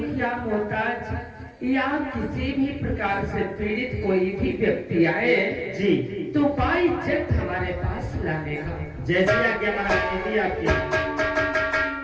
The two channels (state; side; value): identical; both; correlation 1.00